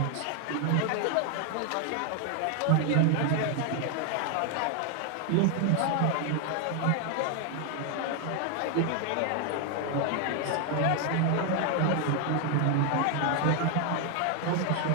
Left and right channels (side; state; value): both; different; correlation 0.01